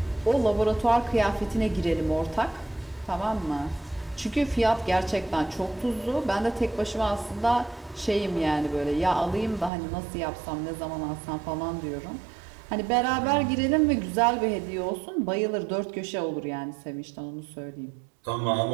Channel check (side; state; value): left; drops out; at 9.7 s